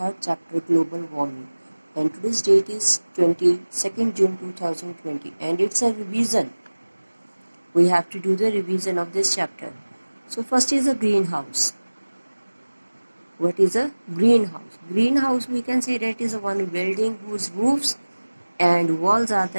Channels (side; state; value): both; inverted; correlation -1.00